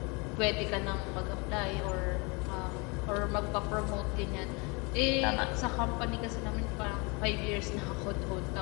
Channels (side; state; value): right; quieter; 29.1 dB